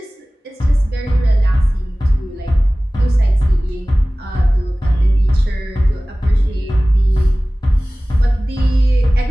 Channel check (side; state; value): both; normal; correlation 0.98